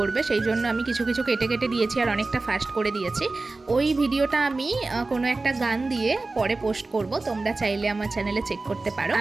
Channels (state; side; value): quieter; left; 3.4 dB